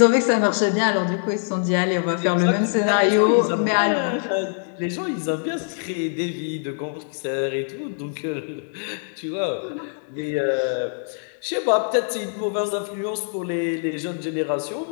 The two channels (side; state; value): right; silent; 62 dB below the other